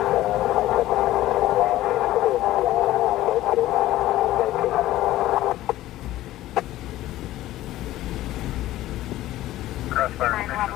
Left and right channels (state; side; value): quieter; right; 15.1 dB